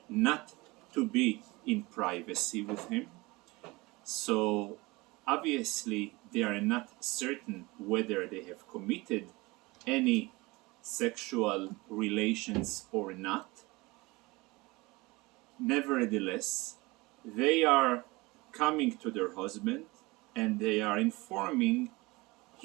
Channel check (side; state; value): left; quieter; 23.0 dB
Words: not to be in privacy with him. So obviously they are not certain whether they have committed any sexual relations or not. Nevertheless, they are coming to their husband and they are informing